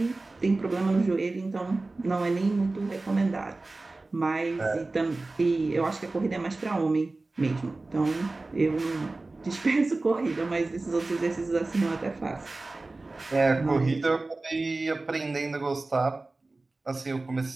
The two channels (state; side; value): quieter; left; 3.2 dB